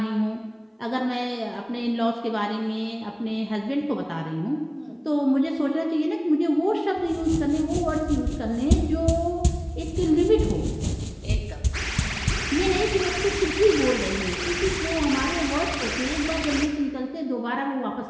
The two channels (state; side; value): identical; both; correlation 1.00